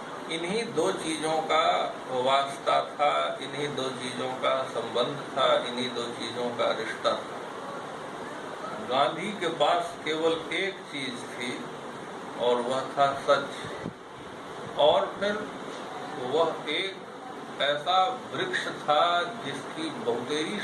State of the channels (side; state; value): both; identical; correlation 1.00